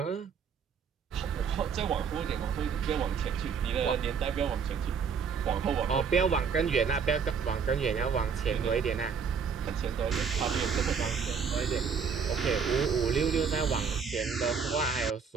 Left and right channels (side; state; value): left; quieter; 6.2 dB